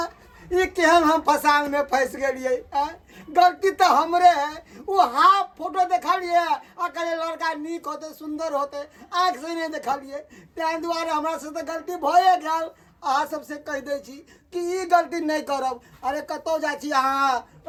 ई केहन हम फसान में फंस गेलिए गलती तो हमरे है वो हाफ फोटो देखलिए अकेले लड़का नीक होते सुंदर होते आँख से नहीं देखलिए तैं दुआरे हमरा से तो गलती भए गेल अहाँ सबसे कह दै छी कि ई गलती नहीं करब अरे कतौ जाइ छी अहाँ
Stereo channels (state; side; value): identical; both; correlation 1.00